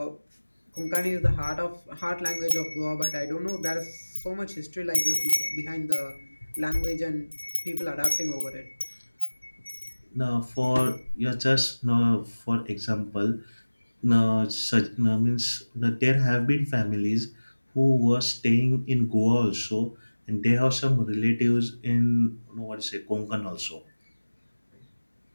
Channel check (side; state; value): both; inverted; correlation -1.00